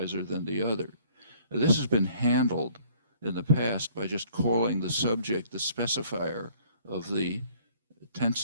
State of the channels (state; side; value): inverted; both; correlation -0.57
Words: than the other. This has been handled in the past by just calling the subject the specifier of the tense